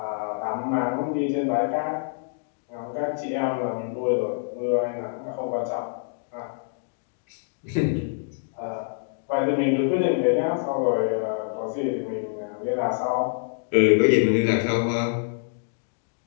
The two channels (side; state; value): right; silent; digital silence